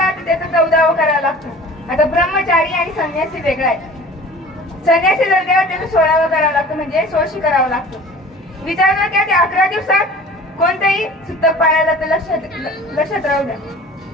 तर त्याचं 14वा करावं लागतं. आता ब्रह्मचारी आणि संन्यासी वेगळा आहे. संन्यासी जर गेला त्याचं 16वा करावं लागतं, म्हणजे 16शी करावं लागतं. विचार जर केला ते 11 दिवसात कोणतेही सुतक पाळायला तर लक्षात राहू द्या.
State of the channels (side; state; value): both; normal; correlation 0.43